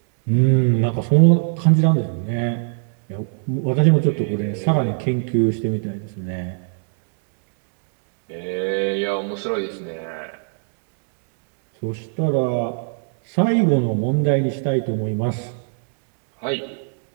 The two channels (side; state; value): left; silent; 64 dB below the other